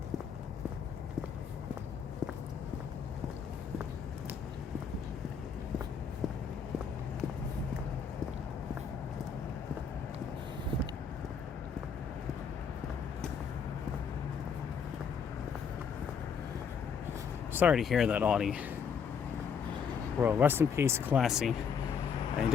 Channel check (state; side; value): quieter; right; 6.6 dB